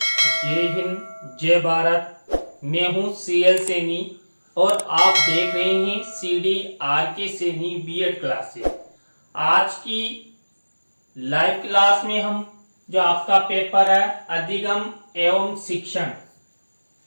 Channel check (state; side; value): inverted; both; correlation -1.00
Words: हिंद जय भारत। मैं हूं सीएल सैनी और आप देख रहे हैं CD RK Saini BEd classes. आज की लाइव क्लास में हम जो आपका पेपर है अधिगम एवं शिक्षण,